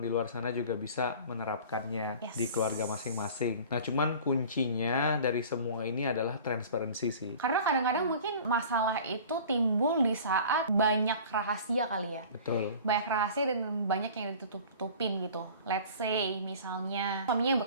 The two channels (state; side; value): inverted; both; correlation -0.43